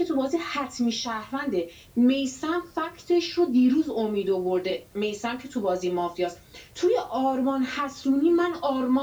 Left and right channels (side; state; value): both; identical; correlation 1.00